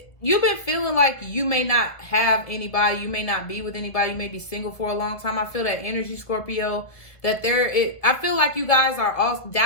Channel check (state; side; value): late; right; 1.5 ms